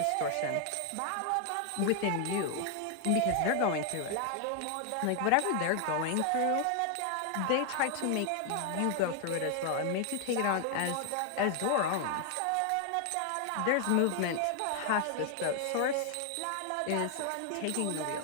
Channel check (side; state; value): both; different; correlation 0.00